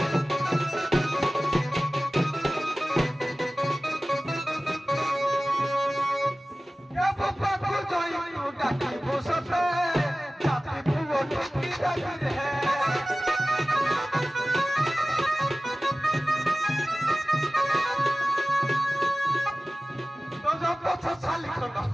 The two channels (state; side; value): normal; both; correlation 0.97